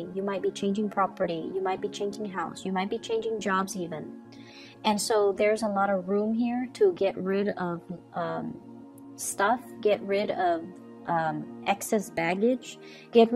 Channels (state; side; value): identical; both; correlation 1.00